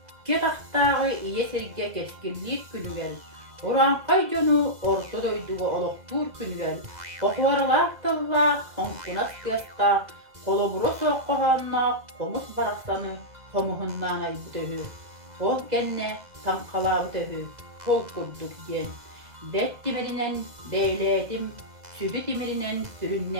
taktağı iye serge keskinlik günü gel. Oran kayconu orta doyduğu oluktur günü gel. Okuvarlar tılla, onkunas kıyasqa, koloburo soğuk kohanna, komus baraksanı, komuhunnan ay bütöhü. Kol genne, tankala bütöhü, kol kurduk gen. Det dimirinen deyledim, sübü dimirinen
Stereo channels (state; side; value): late; left; 2.0 ms